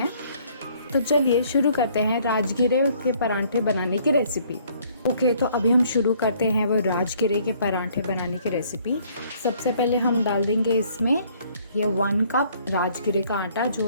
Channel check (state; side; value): inverted; both; correlation -0.61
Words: तो चलिए शुरू करते हैं राजगिरे के पराठे बनाने की रेसिपी। ओके, तो अभी हम शुरू करते हैं वो राजगिरे के पराठे बनाने की रेसिपी। सबसे पहले हम डाल देंगे इसमें ये 1 कप राजगिरे का आटा जो